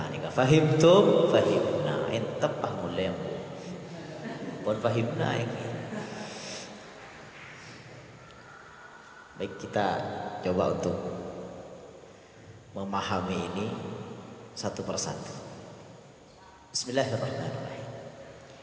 nika fahimtum fahimna entep pangulem pun fahimna iki. Baik, kita coba untuk memahami ini satu persatu. Bismillahirrahmanirrahim.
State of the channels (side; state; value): both; identical; correlation 1.00